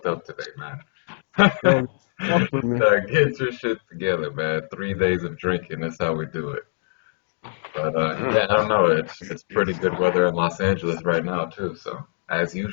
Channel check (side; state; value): right; silent; digital silence